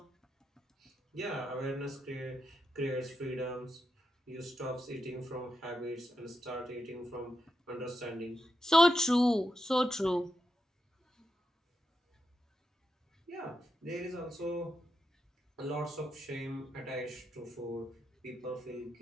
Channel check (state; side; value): normal; both; correlation 0.86